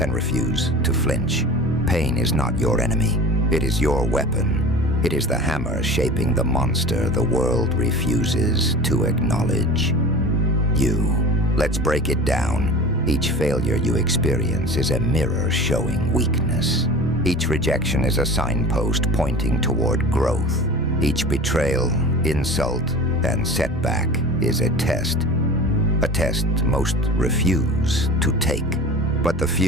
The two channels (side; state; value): both; normal; correlation 0.37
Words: refuse to flinch. Pain is not your enemy. It is your weapon. It is the hammer shaping the monster the world refuses to acknowledge. Let's break it down. Each failure you experience is a mirror showing weakness. Each rejection is a signpost pointing toward growth. Each betrayal, insult, and setback is a test most refuse to take. But the